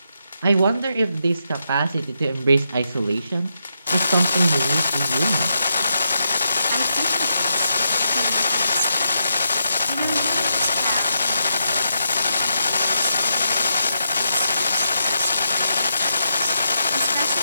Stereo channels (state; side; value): inverted; both; correlation -0.83